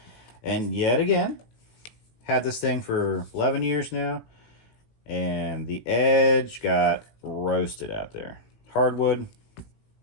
And yet again, had this thing for 11 years now. And the edge got roasted out there. Hardwood,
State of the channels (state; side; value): late; right; 18 ms